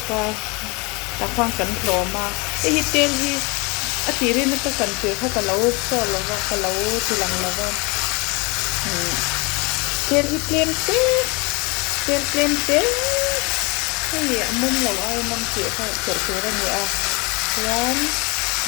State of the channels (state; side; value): quieter; right; 28.3 dB